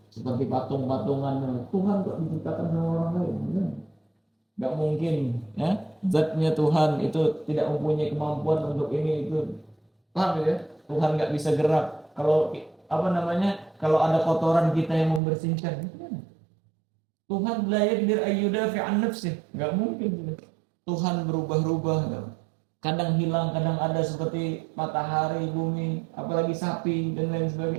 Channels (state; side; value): drops out; left; at 15.2 s